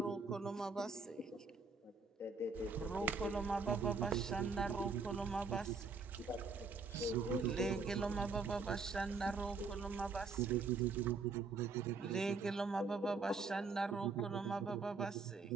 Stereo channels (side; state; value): left; quieter; 4.4 dB